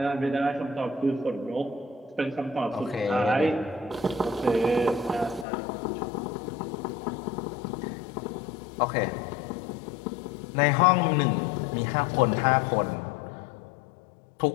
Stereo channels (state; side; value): drops out; right; at 5.5 s